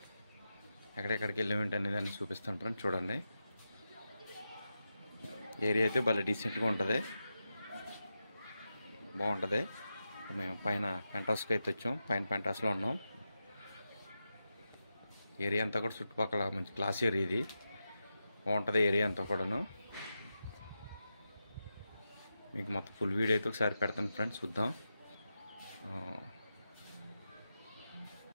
ఎక్కడెక్కడికి వెళ్ళామేంటి అనేది అన్ని చూపిస్తాను ఫ్రెండ్స్. చూడండి, ఏరియా అయితే భలే డీసెంట్గా ఉంటుంది, బాగుంటుంది. మేము పైన పెంటాస్కి అయితే వచ్చాం. పైన పెంటాస్లో ఉన్నాం. ఏరియా అంతా కూడా చుట్టుపక్కల మంచి క్లాస్ ఏరియా, ఇది బాగుంటుంది ఏరియా అంతా కూడాను. మీకు మొత్తం ఫుల్ వీడియో అయితే ఒకసారి పెడతాను ఫ్రెండ్స్, చూద్దాం.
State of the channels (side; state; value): both; inverted; correlation -0.90